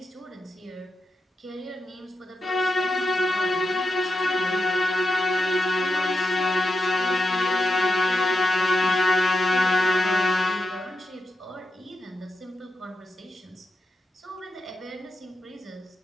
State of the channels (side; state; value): both; normal; correlation 0.85